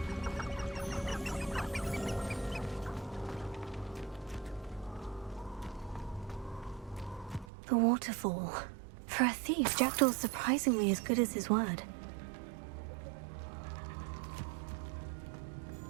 The waterfall. For a thief, Jackdaw's surprisingly as good as his word.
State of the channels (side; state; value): left; drops out; at 7.5 s